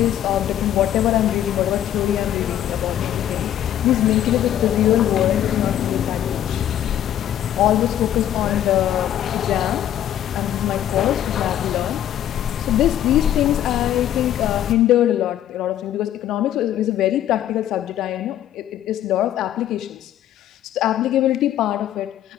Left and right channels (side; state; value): right; quieter; 11.4 dB